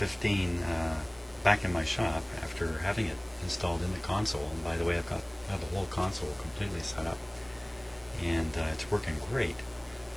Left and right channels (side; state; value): left; noise; hiss, 28 dB below the sound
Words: back in my shop after having it installed in the console. And by the way, I have the whole console completely set up, and it's working great.